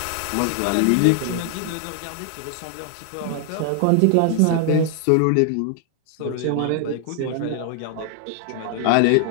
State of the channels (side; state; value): both; different; correlation 0.00